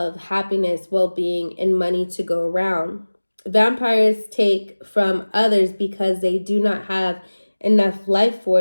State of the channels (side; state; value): both; inverted; correlation -1.00